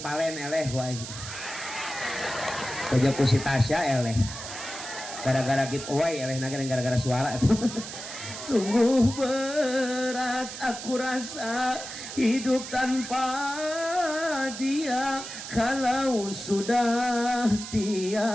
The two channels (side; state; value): right; noise; hiss, 9 dB below the sound